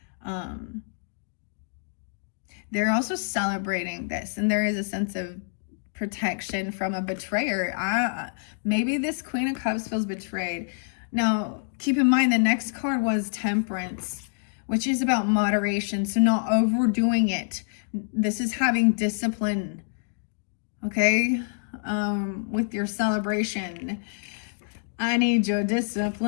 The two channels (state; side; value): silent; right; digital silence